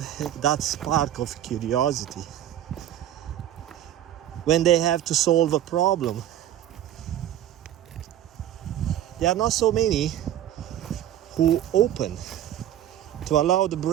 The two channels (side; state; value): left; quieter; 11.7 dB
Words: that spark of curiosity when they have to solve a problem. There are not so many who open to allow the